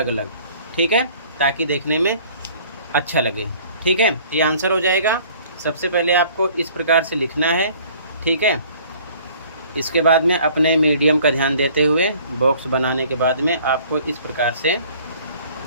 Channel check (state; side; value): inverted; both; correlation -0.53